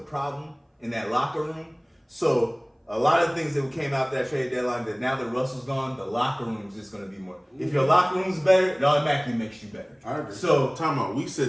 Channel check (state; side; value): identical; both; correlation 1.00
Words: in that locker room. So a lot of things that came out that trade deadline that now that Russell's gone, the locker room is just going to be more. If your locker room's better, it automatically makes you better. I agree. So Time out. We said